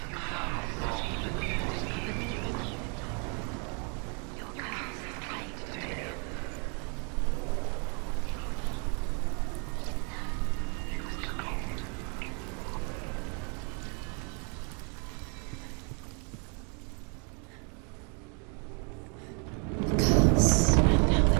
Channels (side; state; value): left; quieter; 36.9 dB